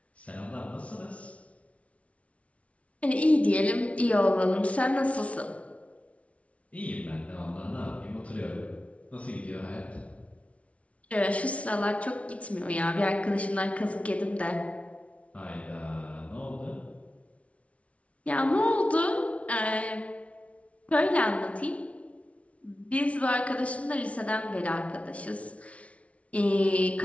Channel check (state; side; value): late; right; 0.064 ms